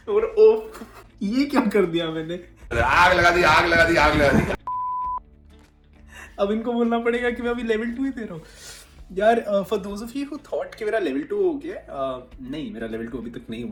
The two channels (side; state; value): both; identical; correlation 1.00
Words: और ओह ये क्या कर दिया मैंने, आग लगा दी, आग लगा दी, आग लगा दी। अब इनको बोलना पड़ेगा कि मैं अभी लेवल 2 ही दे रहा हूँ यार। For those of you who thought कि मेरा लेवल 2 हो गया, नहीं मेरा लेवल 2 अभी तक नहीं